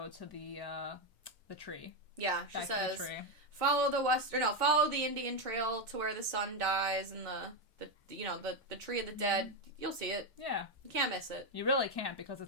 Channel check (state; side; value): normal; both; correlation 0.07